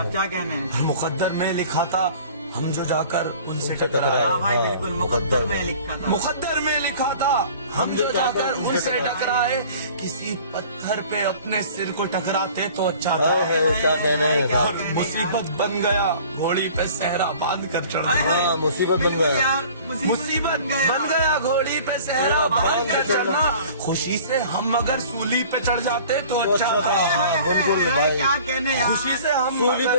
कहने हैं? मुकद्दर में लिखा था हम जो जाकर उनसे टकराए। हाँ भाई बिल्कुल, मुकद्दर में लिखा था। मुकद्दर में लिखा था हम जो जाकर उनसे टकराए। किसी पत्थर पे अपने सिर को टकराते तो अच्छा था। और मुसीबत बन गया घोड़ी पे सहरा बांध कर चढ़ा। मुसीबत बन गया, मुसीबत बन गया घोड़ी पे सहरा बांध कर चढ़ना। खुशी से हम अगर सूली पे चढ़ जाते तो अच्छा था। क्या कहने यार, खुशी से हम सूली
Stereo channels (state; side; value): inverted; both; correlation -0.47